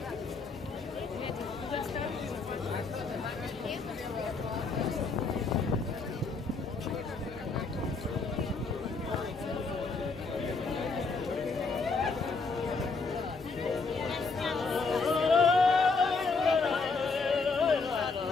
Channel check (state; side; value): quieter; right; 4.2 dB